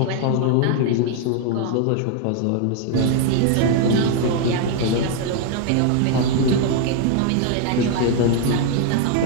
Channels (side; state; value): both; different; correlation 0.00